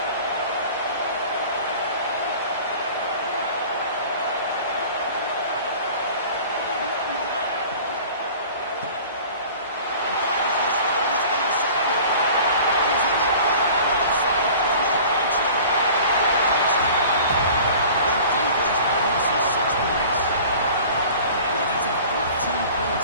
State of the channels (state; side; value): inverted; both; correlation -0.44